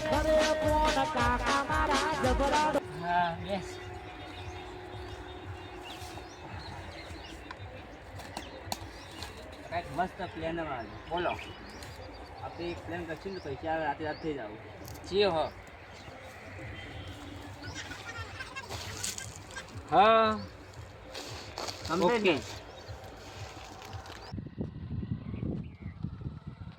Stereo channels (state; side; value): identical; both; correlation 1.00